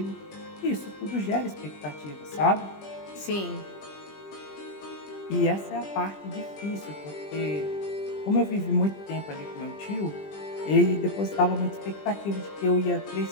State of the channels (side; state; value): right; late; 20 ms